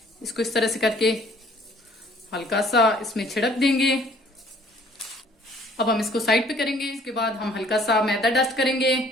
इसको इस तरह से करके हल्का सा इसमें छिड़क देंगे। अब हम इसको साइड पे करेंगे। इसके बाद हम हल्का सा मैदा डस्ट करेंगे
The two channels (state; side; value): normal; both; correlation 0.57